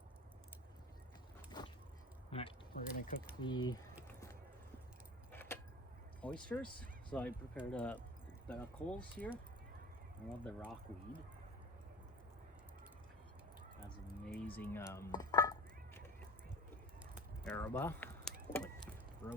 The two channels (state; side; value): normal; both; correlation 0.37